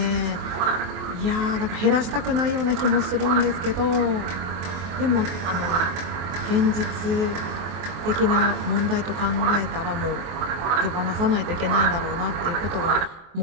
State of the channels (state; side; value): late; left; 23 ms